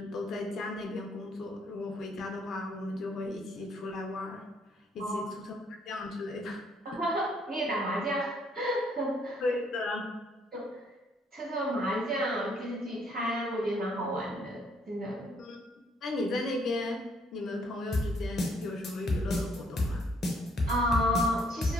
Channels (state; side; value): normal; both; correlation 0.67